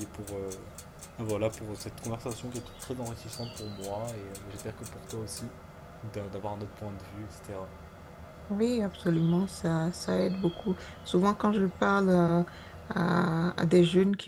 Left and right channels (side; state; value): both; identical; correlation 1.00